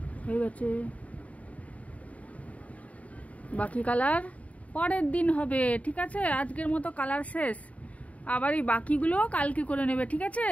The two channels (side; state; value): right; late; 0.068 ms